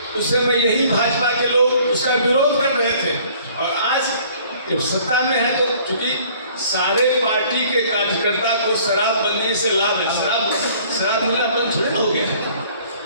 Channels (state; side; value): inverted; both; correlation -0.55